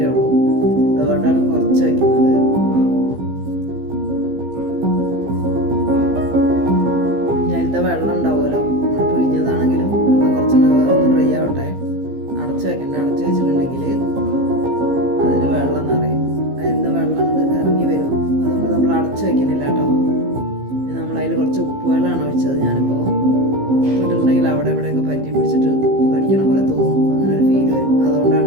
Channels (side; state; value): left; late; 15 ms